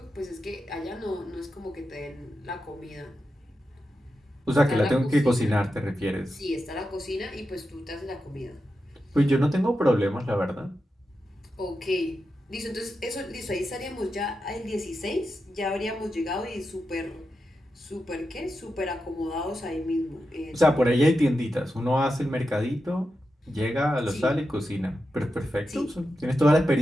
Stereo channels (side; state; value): both; normal; correlation 0.89